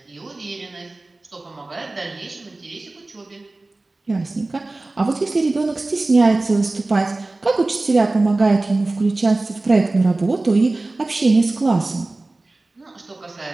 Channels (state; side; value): quieter; left; 3.1 dB